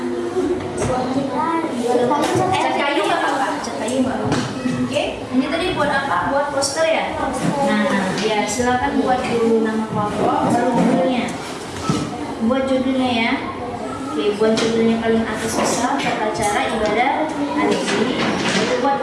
Cat kayu nggak apa-apa. Cat kayu nggak apa-apa. Oke, ini tadi buat apa? Buat poster ya? Nah, ya silakan buat dulu nama kelompok, baru judulnya. Buat judulnya ya. Oke, buat judulnya paling atas bisa tata cara ibadah haji. Itu buat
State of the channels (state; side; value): identical; both; correlation 1.00